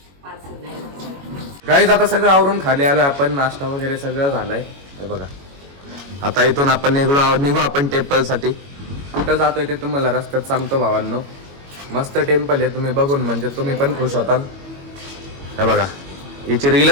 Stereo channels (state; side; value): late; left; 21 ms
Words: गाईज आता सगळं आवरून खाली आलोय आपण, नाश्ता वगैरे सगळं झालंय हे बघा. आता इथून आपण निघू आपण टेम्पल साठी. कुठं जातोय ते तुम्हाला रस्त्यात सांगतो भावांनो. मस्त टेम्पल आहे, तुम्ही बघून म्हणजे तुम्ही पण खुश होताल. हे बघा हिची